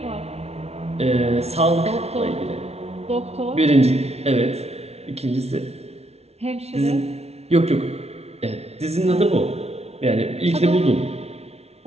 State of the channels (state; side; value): late; left; 0.31 ms